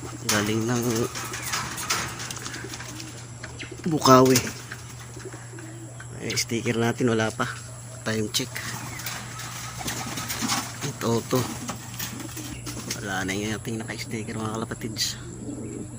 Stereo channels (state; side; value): identical; both; correlation 1.00